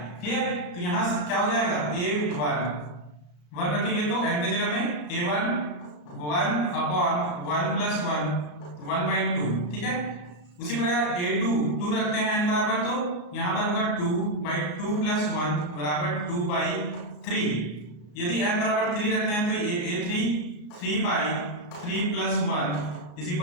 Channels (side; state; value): right; late; 33 ms